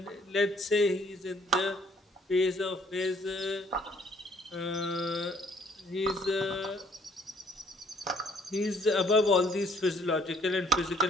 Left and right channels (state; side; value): normal; both; correlation 0.61